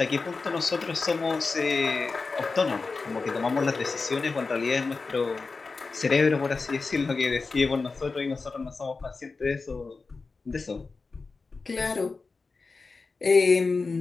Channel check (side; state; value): right; quieter; 4.2 dB